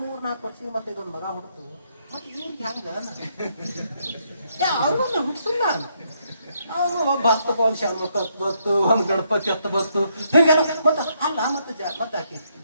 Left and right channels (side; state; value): both; inverted; correlation -0.74